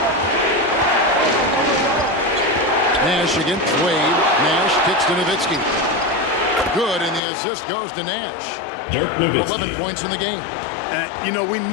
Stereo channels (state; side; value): drops out; right; at 7.2 s